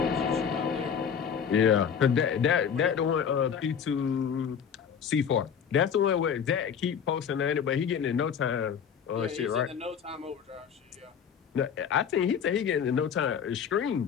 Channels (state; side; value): quieter; right; 7.5 dB